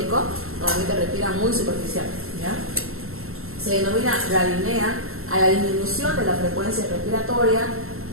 normalmente respiran muy superficial, ¿ya? Se denomina radiapnea a la disminución de la frecuencia respiratoria,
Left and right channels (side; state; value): left; late; 0.62 ms